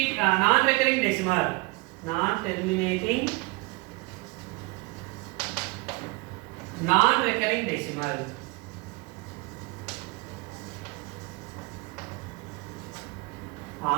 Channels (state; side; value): quieter; left; 25.7 dB